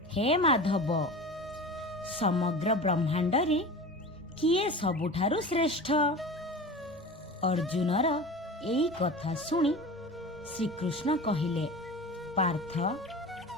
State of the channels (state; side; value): normal; both; correlation 0.33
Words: ହେ ମାଧବ, ସମଗ୍ର ବ୍ରହ୍ମାଣ୍ଡରେ କିଏ ସବୁଠାରୁ ଶ୍ରେଷ୍ଠ? ଅର୍ଜୁନର ଏଇ କଥା ଶୁଣି ଶ୍ରୀକୃଷ୍ଣ କହିଲେ, ପାର୍ଥ,